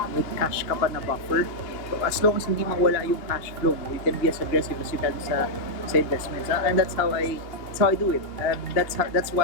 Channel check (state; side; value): late; right; 2.8 ms